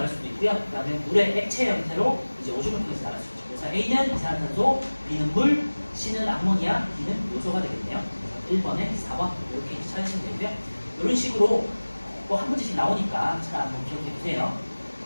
수도 있고요. 그 다음에 물의 액체 형태로 이제 오줌을 통해서 나갈 수 있죠. 그래서 A는 이산화탄소, B는 물, C는 암모니아, D는 요소가 되겠네요. 1번에 4번 이렇게 찾으시면 되고요. 이런 식으로 또 한 문제씩 나오니까 잘 한번 기억해 두세요.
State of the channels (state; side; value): inverted; both; correlation -1.00